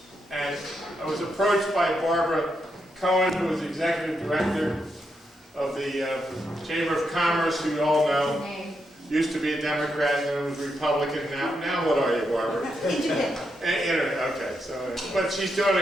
And I was approached by Barbara Cohen, who is Executive Director of the Chamber of Commerce, who you all know. Used to be a Democrat and then was Republican. Now what are you, Barbara? Internet. Okay, so, but she's doing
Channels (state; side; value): normal; both; correlation 0.82